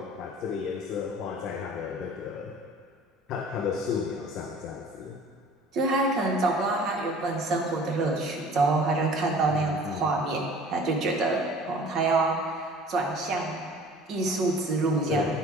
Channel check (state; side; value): normal; both; correlation 0.47